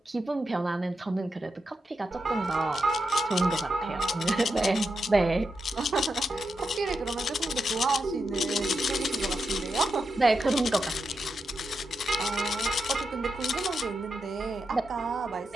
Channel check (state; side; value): normal; both; correlation 0.86